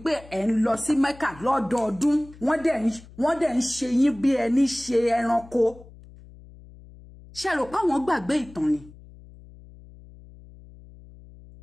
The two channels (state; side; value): noise; left; hum, 21 dB below the sound